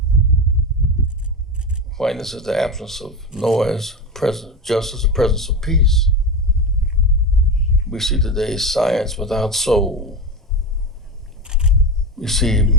Quietness is the absence of noise, justice, the presence of peace. We see today science without soul. We see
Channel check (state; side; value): normal; both; correlation 0.20